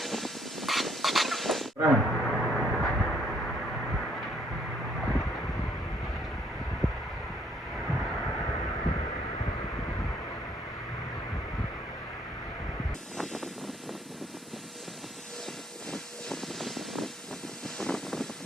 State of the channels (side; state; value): both; normal; correlation 0.66